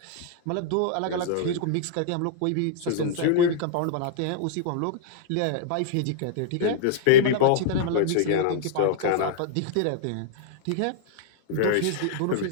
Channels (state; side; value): different; both; correlation -0.01